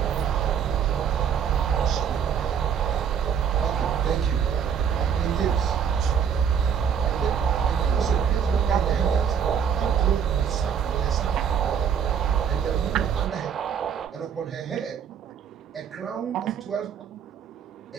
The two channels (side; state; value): left; quieter; 7.6 dB